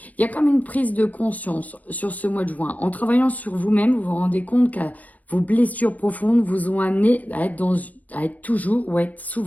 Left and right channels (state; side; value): late; right; 0.074 ms